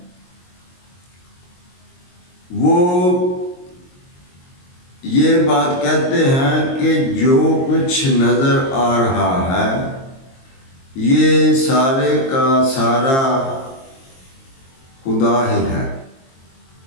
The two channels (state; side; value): late; right; 22 ms